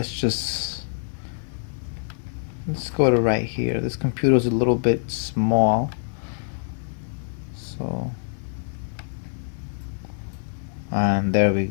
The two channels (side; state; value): right; silent; 58 dB below the other